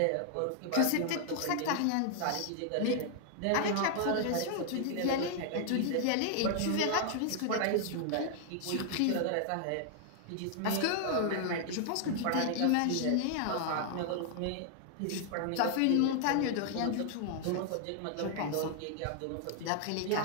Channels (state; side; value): different; both; correlation 0.00